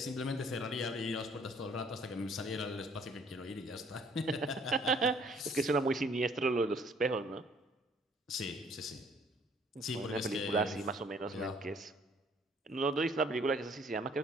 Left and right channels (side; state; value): both; normal; correlation 0.61